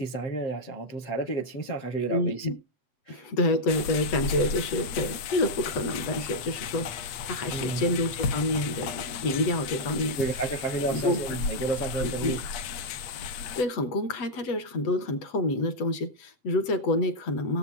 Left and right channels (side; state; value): right; late; 8.4 ms